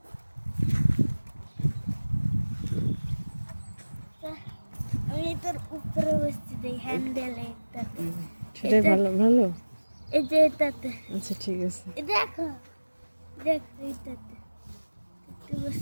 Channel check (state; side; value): inverted; both; correlation -1.00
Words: আমি তোর উপরে বসছি দেই হ্যান্ডেলে এটাতে। সেটাই ভালো ভালো। এই যে এটাতে। আচ্ছা ঠিক আছে, এই দেখো দেখ এইটাতে